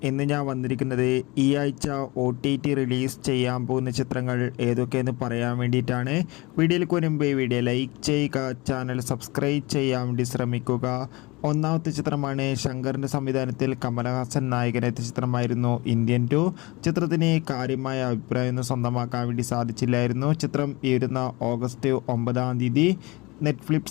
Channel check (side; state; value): right; quieter; 23.8 dB